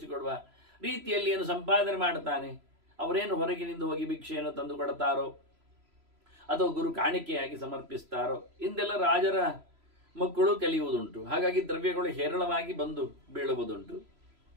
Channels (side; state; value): left; late; 3.0 ms